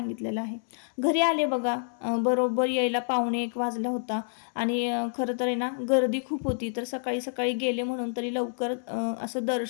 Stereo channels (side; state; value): right; silent; 59 dB below the other